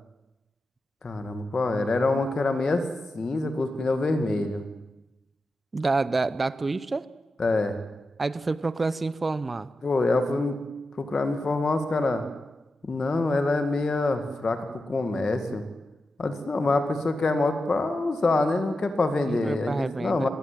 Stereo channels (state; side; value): normal; both; correlation 0.90